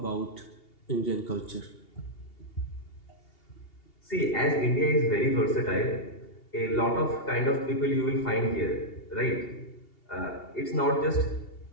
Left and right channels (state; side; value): late; right; 2.8 ms